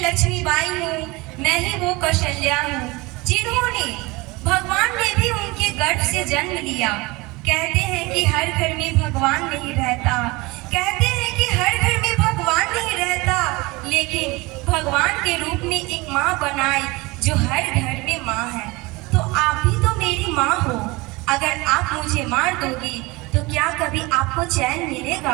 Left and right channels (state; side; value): quieter; left; 23.5 dB